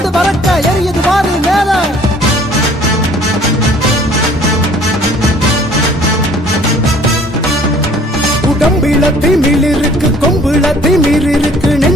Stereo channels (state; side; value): normal; both; correlation 0.54